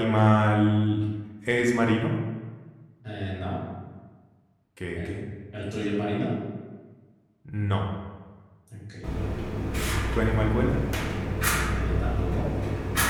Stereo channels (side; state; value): both; identical; correlation 1.00